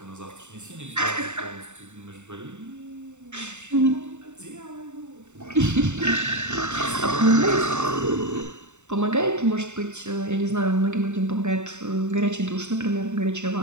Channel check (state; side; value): late; left; 0.84 ms